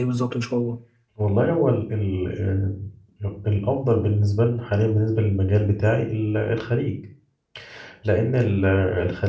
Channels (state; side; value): identical; both; correlation 1.00